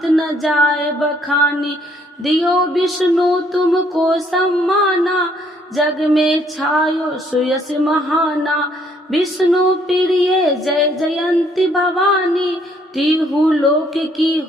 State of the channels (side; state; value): both; normal; correlation 0.66